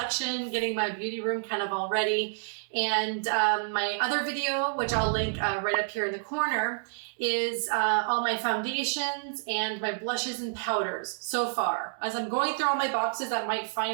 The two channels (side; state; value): left; silent; digital silence